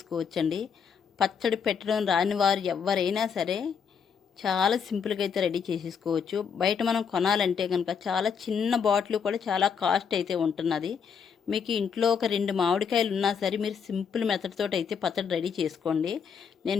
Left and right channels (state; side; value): quieter; right; 6.8 dB